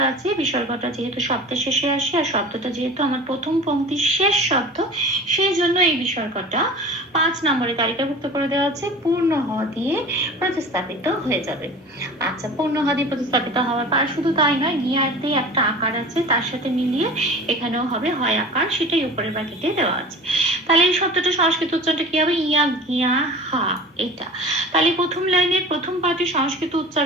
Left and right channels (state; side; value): normal; both; correlation 0.38